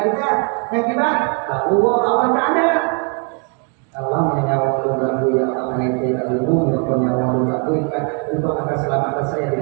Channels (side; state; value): left; quieter; 37.7 dB